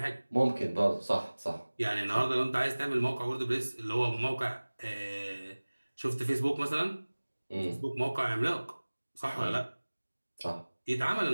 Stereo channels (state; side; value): inverted; both; correlation -1.00